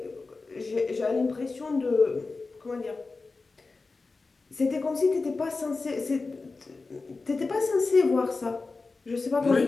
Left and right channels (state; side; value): quieter; right; 3.9 dB